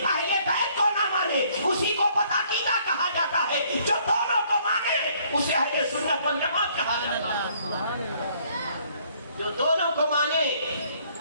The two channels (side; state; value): both; inverted; correlation -0.63